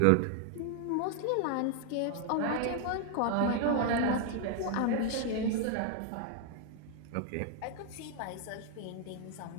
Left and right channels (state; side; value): different; both; correlation 0.00